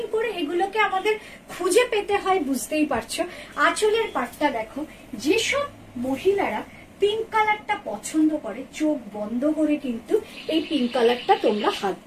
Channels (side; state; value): both; identical; correlation 1.00